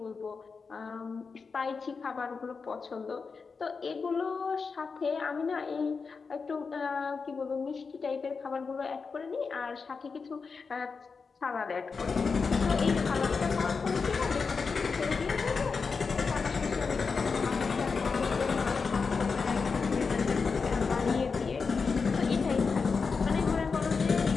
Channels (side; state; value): right; quieter; 5.0 dB